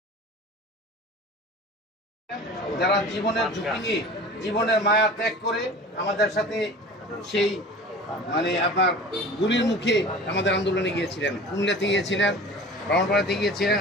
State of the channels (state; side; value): normal; both; correlation 0.39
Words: যারা জীবনের ঝুঁকি নিয়ে জীবনের মায়া ত্যাগ করে আমাদের সাথে সেই আপনার গুলির মুখে আমাদের আন্দোলনে গিয়েছিলেন, কুমিল্লাতে গিয়েছিলেন, ব্রাহ্মণপাড়াতে গিয়েছিলেন,